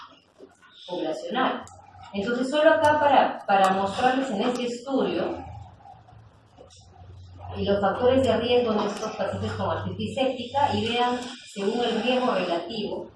poblacional. Entonces, solo acá para mostrarles en este estudio los factores de riesgo de estos pacientes con artritis séptica y vean, según el riesgo relativo,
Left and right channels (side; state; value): both; identical; correlation 1.00